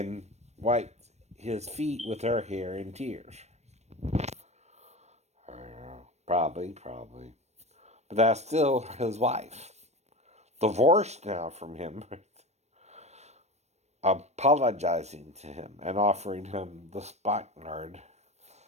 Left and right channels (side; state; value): left; late; 0.32 ms